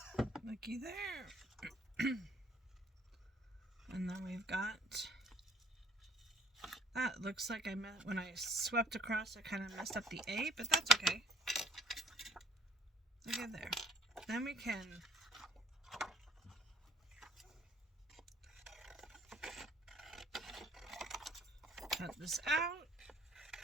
Looky there. And then we've got that. Looks like when I swept across, I kind of messed up the A, but that's okay. Look at there. Then we can cut this out.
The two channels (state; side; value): normal; both; correlation 0.54